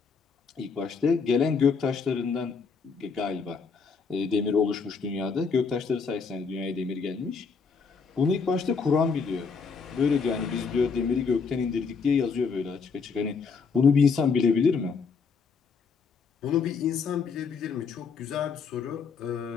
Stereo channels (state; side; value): quieter; right; 5.3 dB